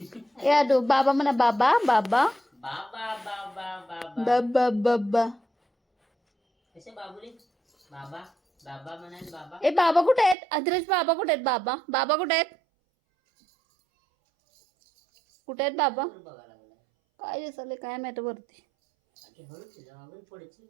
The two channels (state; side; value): drops out; left; at 10.4 s